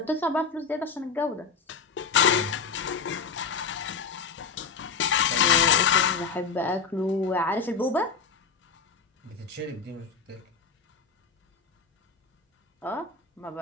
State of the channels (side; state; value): right; quieter; 5.4 dB